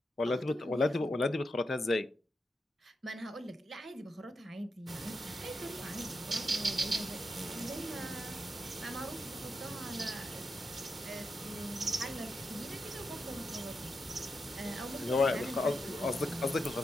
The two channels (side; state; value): both; normal; correlation 0.86